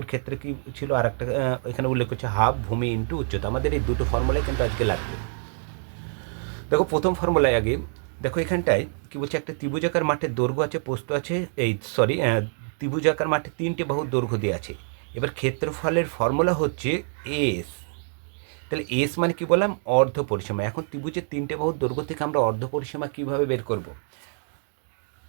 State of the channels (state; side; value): silent; left; 61 dB below the other